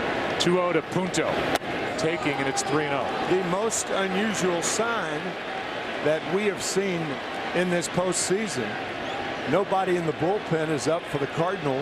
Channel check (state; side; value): identical; both; correlation 1.00